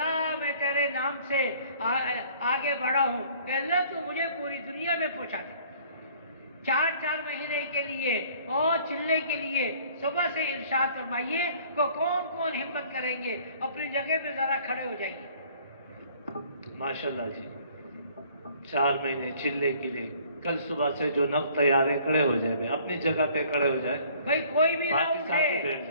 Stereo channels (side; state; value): both; inverted; correlation -0.56